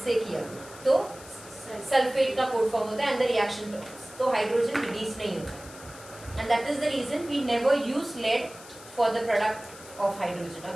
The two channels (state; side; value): noise; left; hiss, 18 dB below the sound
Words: से किया तो सल्फेट का कोड फॉर्म होता है एंड द रिएक्शन टर्म्स, तो हाइड्रोजन रिलीज नहीं होता, and that is the reason we never use lead for the product of hydrogen.